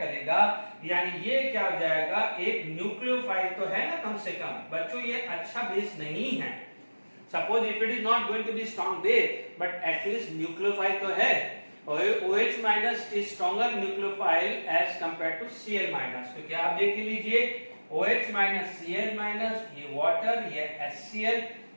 यानी ये क्या हो जाएगा, एक न्यूक्लियोफाइल तो है ना कम से कम बच्चों, ये अच्छा बेस नहीं है। Suppose if it is not going to be strong base but at least nucleophile तो है। OH minus is stronger nucleophile as compare to Cl minus. तो क्या आप देख लीजिए, OH माइनस Cl माइनस, ये वाटर, ये HCl,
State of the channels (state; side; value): inverted; both; correlation -1.00